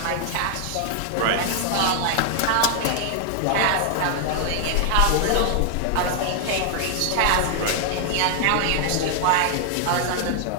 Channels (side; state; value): both; different; correlation 0.00